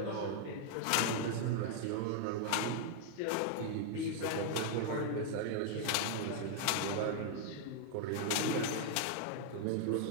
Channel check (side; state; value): both; different; correlation 0.00